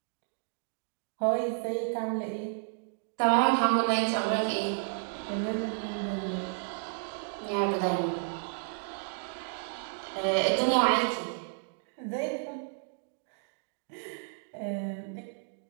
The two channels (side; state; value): left; silent; digital silence